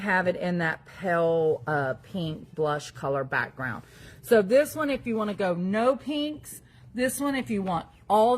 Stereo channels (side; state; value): both; identical; correlation 1.00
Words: it in that pale pink blush color background. So this one, if you want to go no pinks, this one, if you want all